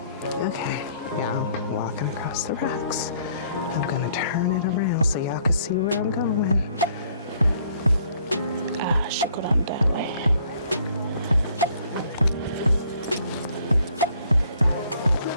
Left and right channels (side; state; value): both; inverted; correlation -0.63